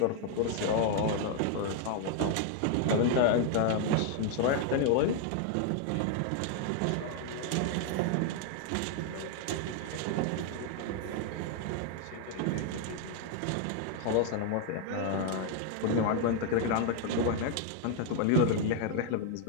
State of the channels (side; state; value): both; different; correlation 0.00